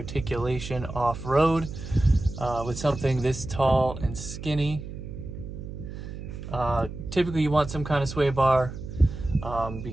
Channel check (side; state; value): right; noise; hum, 10 dB below the sound